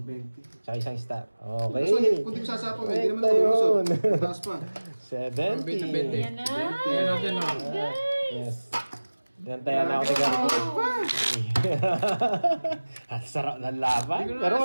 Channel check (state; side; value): inverted; both; correlation -1.00